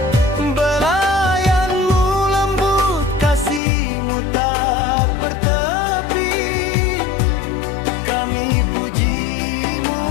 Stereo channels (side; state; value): right; drops out; at 3.6 s